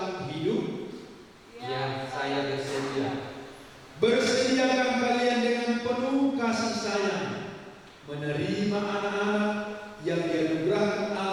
hidup? Ya, saya bersedia. Bersediakah kalian dengan penuh kasih sayang menerima anak-anak yang dianugerahkan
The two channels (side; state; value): both; identical; correlation 1.00